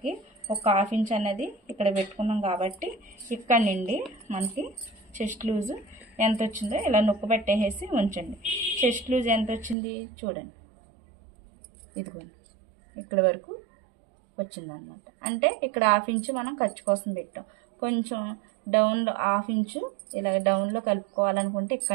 ఒక 1/2 ఇంచ్ అనేది ఇక్కడ పెట్టుకున్నాం కాబట్టి ఇక్కడ నుండి మనకి చెస్ట్ లూజ్ ఎంత వచ్చిందో ఇలా నొక్కు పెట్టేసి ఉంచండి. చెస్ట్ లూజ్ ఎంత వచ్చింది చూడండి, ఇదిగోండి ఇక్కడ వరకు వచ్చిందనమాట. అంటే ఇక్కడ 1/2 ఇంచ్ మనం ఖర్చు కోసం పెట్టాం. కొంచెం డౌన్లో 1/2 ఇంచు ఇలా డౌన్లో కలుపుకోవాలనుకుంటే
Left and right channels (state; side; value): drops out; left; at 9.8 s